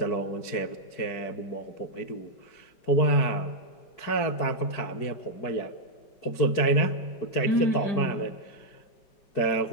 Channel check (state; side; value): late; right; 4.7 ms